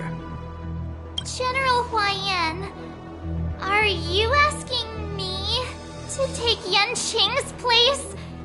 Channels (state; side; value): identical; both; correlation 1.00